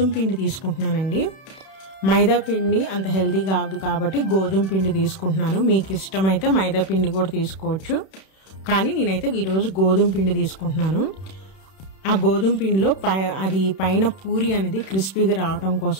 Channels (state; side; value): late; right; 31 ms